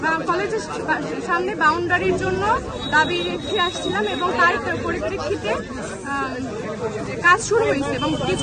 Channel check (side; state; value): both; identical; correlation 1.00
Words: কলেজের সামনে বাউন্ডারির জন্য দাবি রেখে আসছিলাম এবং তার পরিপ্রেক্ষিতে কাজ শুরু হয়েছে এবং